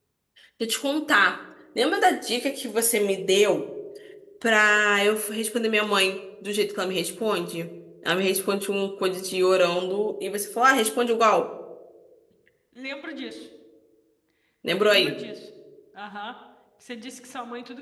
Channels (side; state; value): both; identical; correlation 1.00